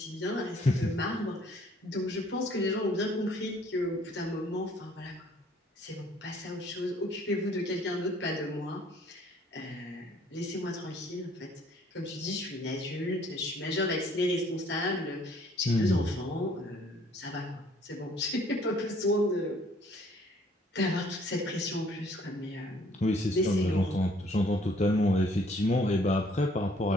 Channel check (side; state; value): both; normal; correlation 0.60